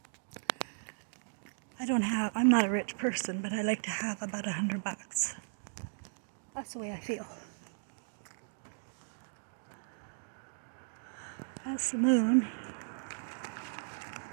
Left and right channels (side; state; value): left; silent; digital silence